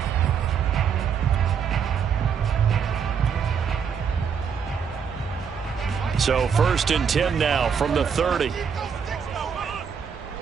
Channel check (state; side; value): quieter; left; 6.9 dB